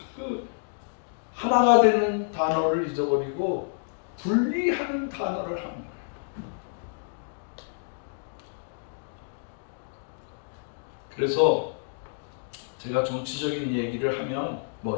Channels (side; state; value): right; silent; digital silence